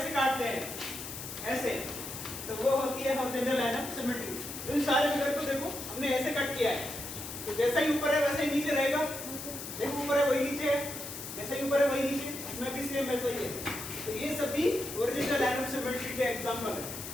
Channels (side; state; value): left; noise; hiss, 9 dB below the sound